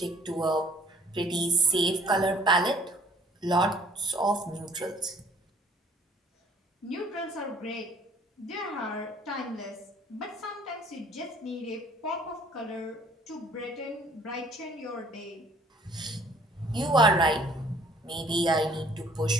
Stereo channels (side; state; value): both; normal; correlation 0.57